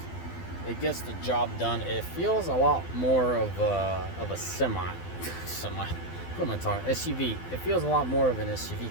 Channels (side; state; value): right; late; 12 ms